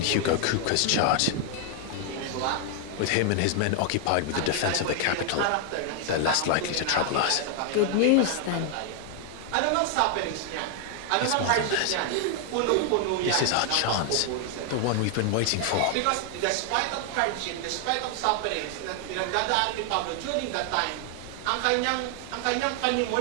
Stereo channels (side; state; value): both; different; correlation 0.00